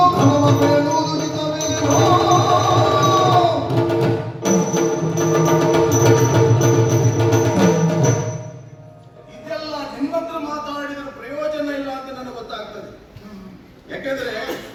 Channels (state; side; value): identical; both; correlation 1.00